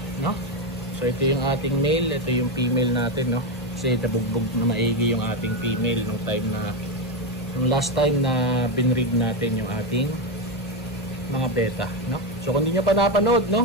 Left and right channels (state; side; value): normal; both; correlation 0.10